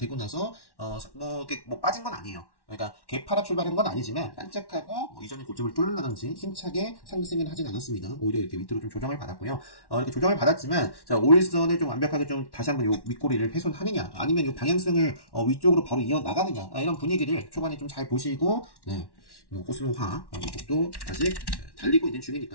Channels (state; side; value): late; right; 1.1 ms